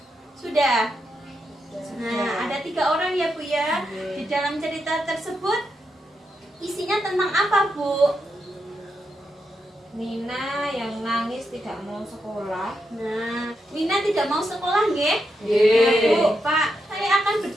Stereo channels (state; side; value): normal; both; correlation 0.84